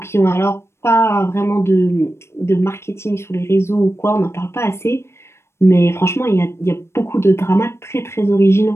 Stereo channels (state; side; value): late; right; 0.13 ms